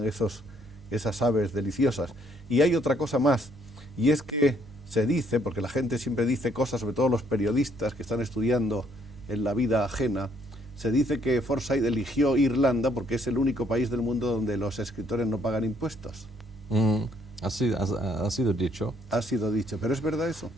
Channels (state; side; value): normal; both; correlation 0.68